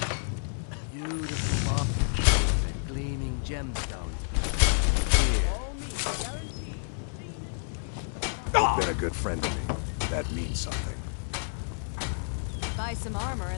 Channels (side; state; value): right; silent; digital silence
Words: Beautiful marble and gleaming gemstones. You've been a good friend to me. That means something. Buy some armor